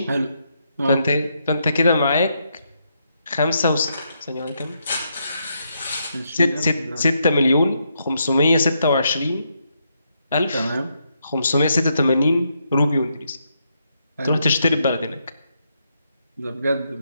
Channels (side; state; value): both; inverted; correlation -0.79